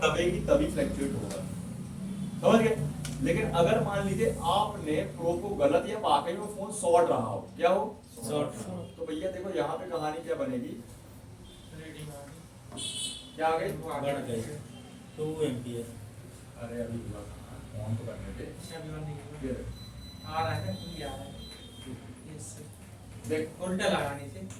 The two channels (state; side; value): identical; both; correlation 1.00